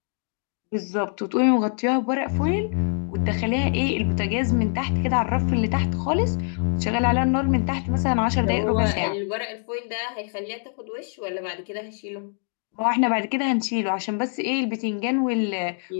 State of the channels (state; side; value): silent; right; 62 dB below the other